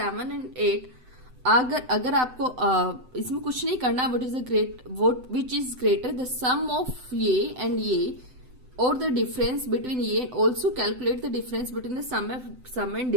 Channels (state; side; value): late; left; 7.9 ms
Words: एंड 8 अगर आपको इसमें कुछ नहीं करना, which is greater the sum of ये एंड ये और द डिफरेंस बिटवीन ये and also calculate the difference between the sum and